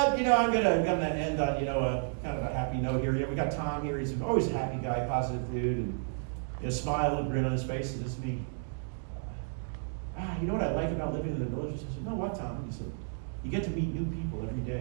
gonna end on a kind of a happy note here. We got Tom here. He's always a happy guy, positive dude, and a smile and grin on his face. He says to me, "You know what I like about living in the villages?" I said, "No, what, Tom?" He said, "You get to meet new people every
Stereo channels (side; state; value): left; silent; digital silence